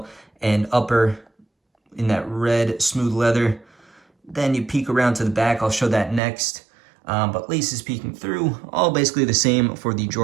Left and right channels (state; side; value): drops out; left; at 6.2 s